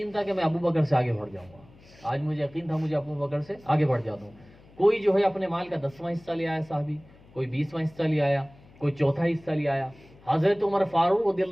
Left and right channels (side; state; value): left; noise; hum, 25 dB below the sound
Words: تھا کہ میں ابو بکر سے آگے بڑھ جاؤں گا، آج مجھے یقین تھا مجھے ابو بکر سے آگے بڑھ جاتا ہوں۔ کوئی جو ہے اپنے مال کا 10واں حصہ لے آیا صحابی، کوئی 20واں حصہ لے آیا، کوئی چوتھا حصہ لے آیا۔ حضرت عمر فاروق رضی